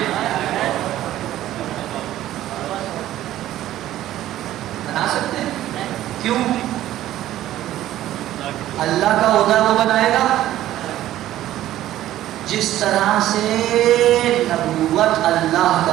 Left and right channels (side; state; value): left; quieter; 13.6 dB